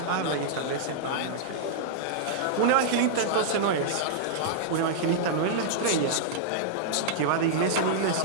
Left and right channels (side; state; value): both; different; correlation -0.02